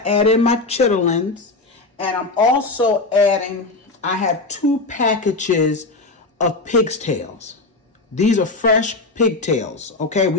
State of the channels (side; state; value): right; quieter; 3.4 dB